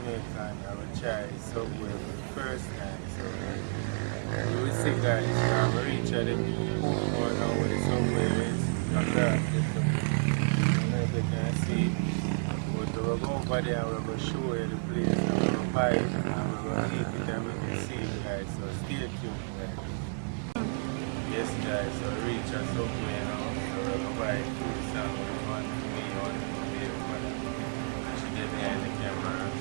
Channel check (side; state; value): left; silent; digital silence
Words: I will try subway for the first time. So you will see guys, I'm going to reach at the Portmore now where the subway is. Across the subway. I don't know if you can see. But we'll go over there and we're going to show you the place and we're going to buy it and we're going to eat it and we can see it guys, so stay tuned guys. Yes guys, so reach us somewhere now, so we're going to buy food sandwich, one for me, one for me, and she get behind the camera,